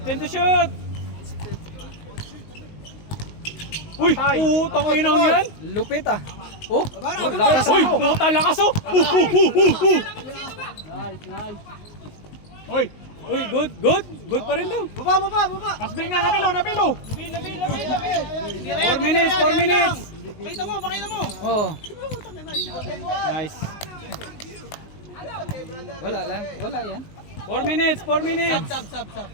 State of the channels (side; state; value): right; late; 19 ms